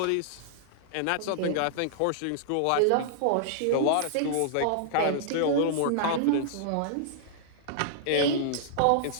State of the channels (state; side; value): different; both; correlation -0.02